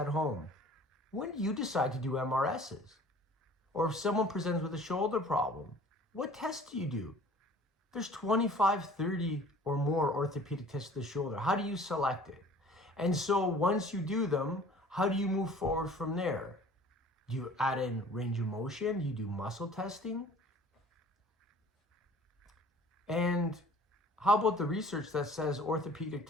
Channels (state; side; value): normal; both; correlation 0.49